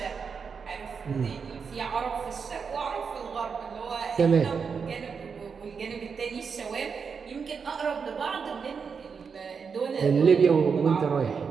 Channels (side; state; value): left; quieter; 5.9 dB